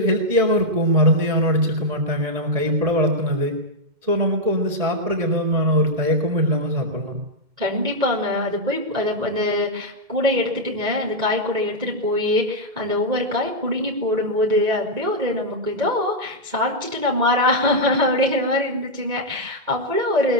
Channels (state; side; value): late; left; 2.1 ms